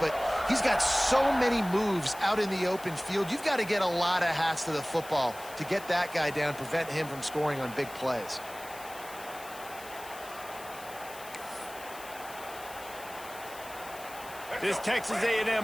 he's got so many moves out in the open field. You've got to get a lot of hats to the football to get that guy down, prevent him from scoring on big plays. This Texas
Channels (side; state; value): left; noise; hiss, 16 dB below the sound